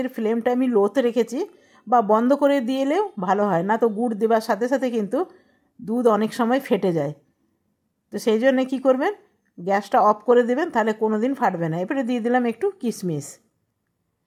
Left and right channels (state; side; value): identical; both; correlation 1.00